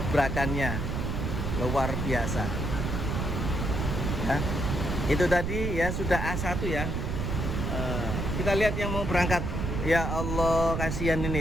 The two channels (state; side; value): noise; right; rumble, 1 dB below the sound